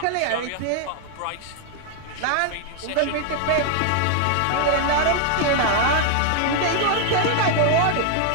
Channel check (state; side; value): different; both; correlation 0.00